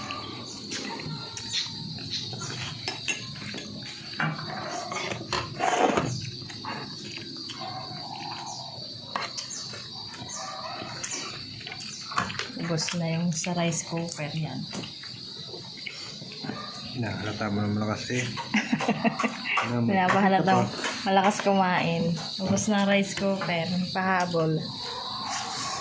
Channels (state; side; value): identical; both; correlation 1.00